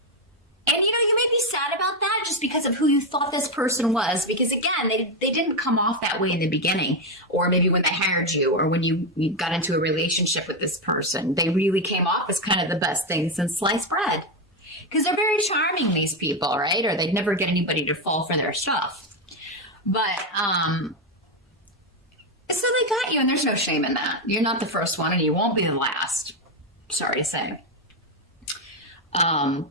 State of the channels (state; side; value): normal; both; correlation 0.07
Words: And, you may be sad about that just because of who you thought this person was. Because, again, they didn't come off that way in the beginning. Or maybe when they hired you or when you got into a relationship with this person. They really came off as kind of the best thing since sliced bread. Because they're very charming, these people, right? Or they'd never get anybody to fall for their stuff. But, so they got you, and there's no shame in that. You're not the first one, and you won't be the last. Sorry to say.